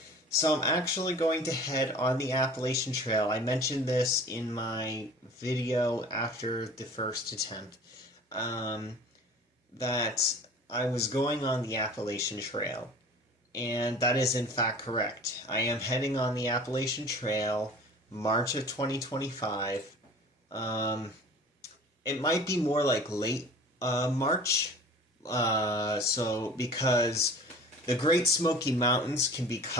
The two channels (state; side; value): normal; both; correlation 0.43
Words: So I'm actually going to head on the Appalachian Trail. I mentioned this in my video after the first attempt. Um, that I was going on the Appalachian Trail, and that is in fact correct. I am heading on the Appalachian Trail, March of 2025. Um, it might be more like late March, because the Great Smoky Mountains can be